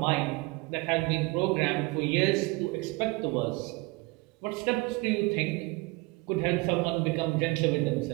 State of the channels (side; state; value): left; quieter; 24.8 dB